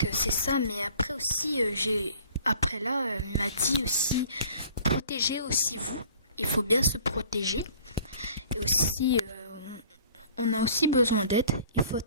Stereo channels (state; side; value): inverted; both; correlation -0.51